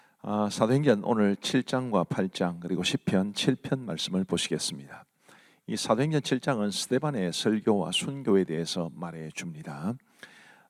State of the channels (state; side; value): identical; both; correlation 1.00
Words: 사도행전 오늘 7장과 8장 그리고 시편 7편 말씀을 보시겠습니다. 이 사도행전 7장은 스데반의 설교와 순교에 대해서 말해 줍니다.